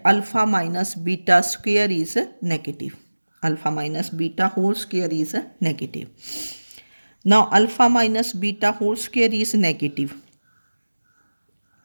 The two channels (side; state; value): both; inverted; correlation -1.00